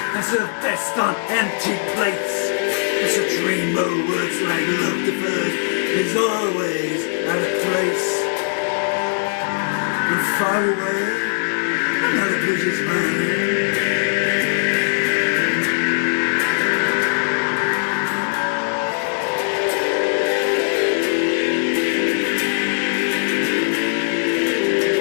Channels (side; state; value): right; silent; digital silence